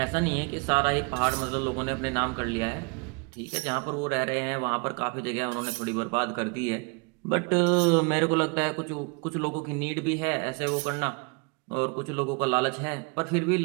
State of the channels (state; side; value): quieter; left; 32.9 dB